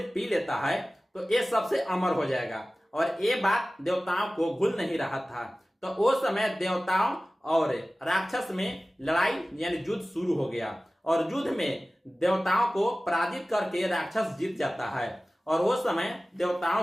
पी लेता है तो ये सबसे अमर हो जाएगा, और ये बात देवताओं को भूल नहीं रहा था। तो वो समय देवताओं और राक्षस में लड़ाई यानी युद्ध शुरू हो गया, और युद्ध में देवताओं को पराजित करके राक्षस जीत जाता है। और वो समय देवताओं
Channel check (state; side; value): normal; both; correlation 0.97